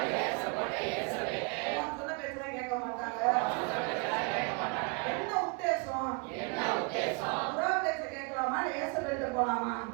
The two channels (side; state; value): left; quieter; 32.1 dB